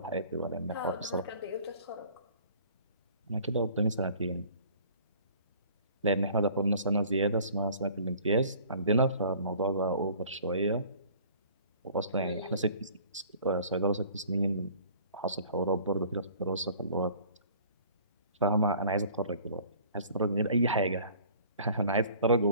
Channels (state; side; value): inverted; both; correlation -0.50